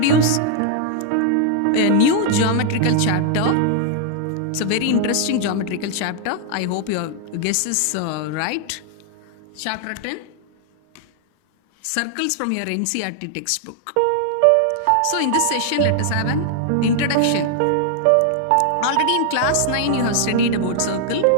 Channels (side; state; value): both; different; correlation 0.00